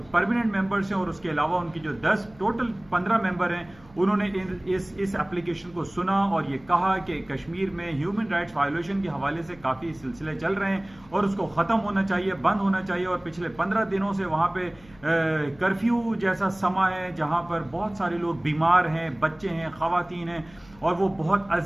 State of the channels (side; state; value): left; noise; hum, 25 dB below the sound